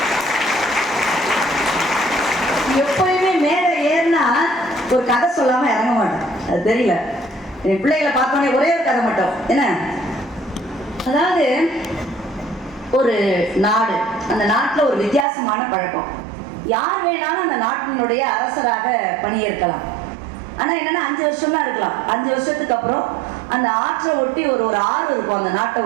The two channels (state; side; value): drops out; left; at 15.2 s